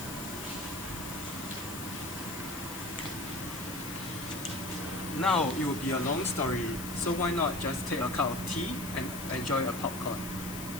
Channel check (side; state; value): left; noise; hiss, 10 dB below the sound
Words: Now it will be a long story, so why not just take a cup of tea and enjoy a popcorn.